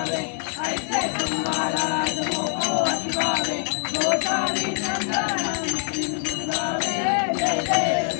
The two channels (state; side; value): silent; right; 60 dB below the other